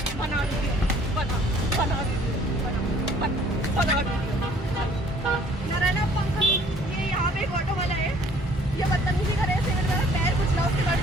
बना वीडियो। बना बना वीडियो। बना वीडियो। नारायण पंकज, ये यहाँ पे एक ऑटो वाला है, ये बदतमीजी करे, ऐसे मेरा पैर कुचला, उसके बाद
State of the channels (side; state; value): both; normal; correlation 0.57